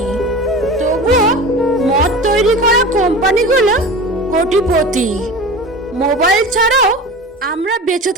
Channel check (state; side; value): normal; both; correlation 0.33